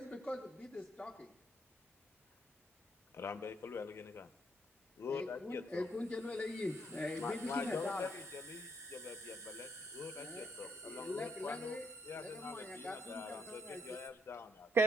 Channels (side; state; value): both; normal; correlation 0.74